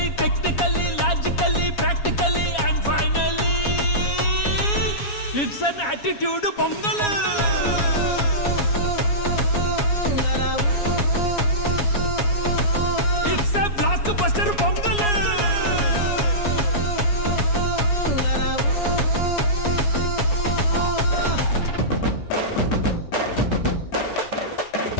technically, logically, practically, and finally, it's an attitude pongal. It's a blockbuster pongal.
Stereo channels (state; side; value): late; right; 7.2 ms